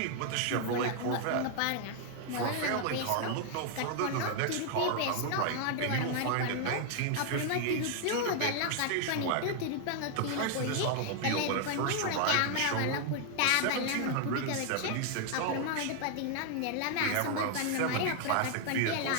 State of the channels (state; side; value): different; both; correlation 0.00